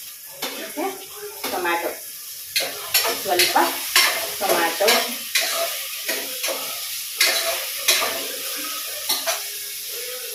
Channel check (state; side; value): identical; both; correlation 1.00